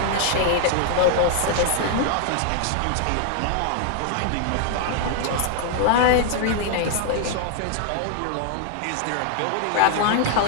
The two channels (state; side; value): different; both; correlation 0.00